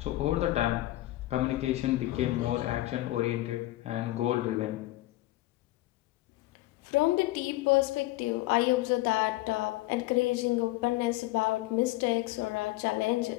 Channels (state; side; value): quieter; right; 17.6 dB